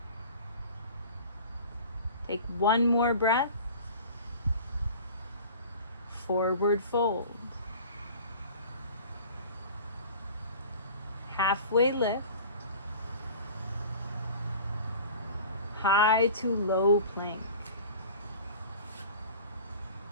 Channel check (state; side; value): inverted; both; correlation -0.41